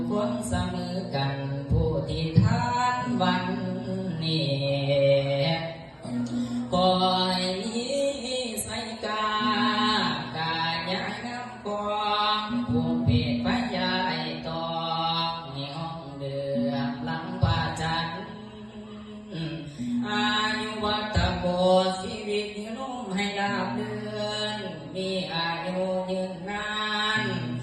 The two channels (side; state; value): both; identical; correlation 1.00